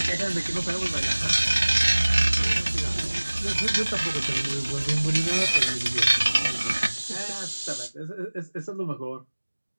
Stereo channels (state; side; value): inverted; both; correlation -1.00